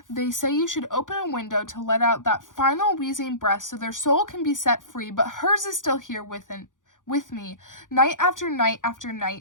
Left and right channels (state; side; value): late; right; 0.88 ms